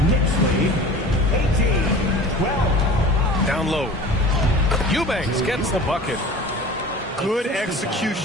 Knicks lead, 18-12. Down low. Eubanks gets the bucket. Good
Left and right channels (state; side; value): normal; both; correlation 0.39